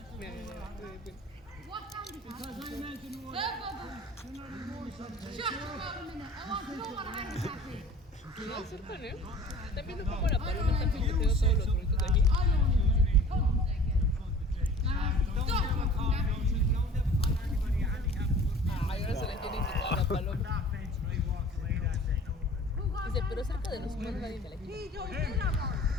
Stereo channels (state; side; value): normal; both; correlation 0.45